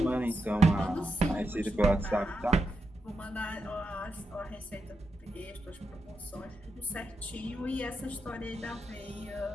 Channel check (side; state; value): both; normal; correlation 0.86